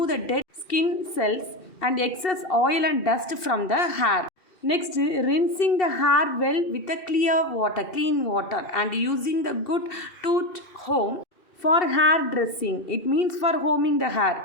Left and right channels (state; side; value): late; right; 2.7 ms